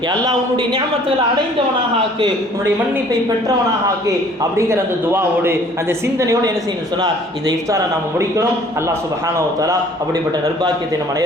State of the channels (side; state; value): both; normal; correlation 0.54